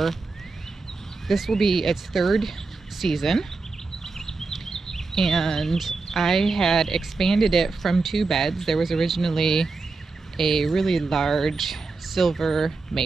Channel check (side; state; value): left; quieter; 4.0 dB